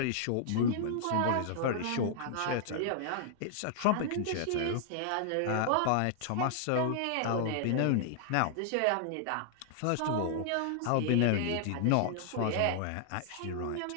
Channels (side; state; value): both; different; correlation -0.01